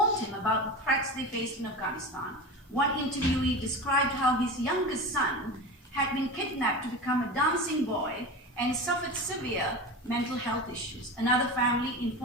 him about the threats they faced in Afghanistan. One interviewee described how his youngest son had been kidnapped to become a dancing boy and suffered severe mental health issues. Another family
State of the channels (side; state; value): both; normal; correlation 0.27